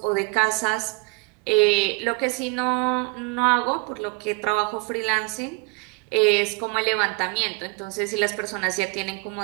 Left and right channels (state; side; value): quieter; left; 30.0 dB